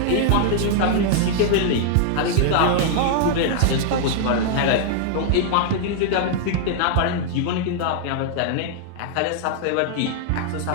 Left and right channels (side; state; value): both; different; correlation -0.01